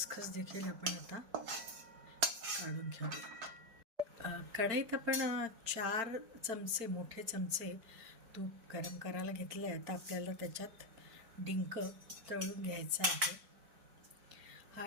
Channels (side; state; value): left; late; 4.4 ms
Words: देखील आपण आता काढून घेऊया. कढईत आपण 4 चमचे मोठे चमचे तूप गरम करायला घेतलं आहे. आता आपल्याला त्याच्यात डिंक तळून घ्यायचा आहे.